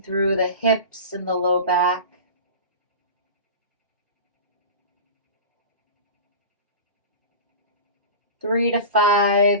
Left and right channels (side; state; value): both; inverted; correlation -0.31